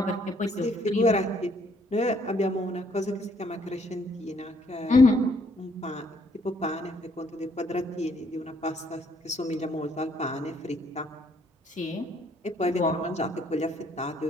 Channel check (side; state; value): both; normal; correlation 0.67